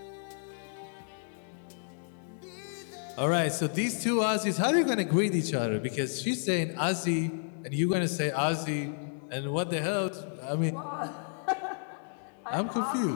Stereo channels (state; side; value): silent; right; digital silence